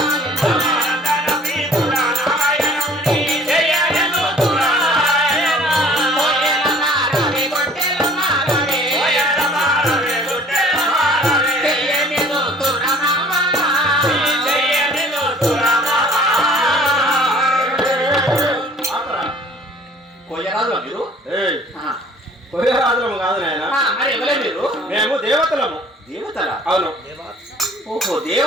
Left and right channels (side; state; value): both; normal; correlation 0.52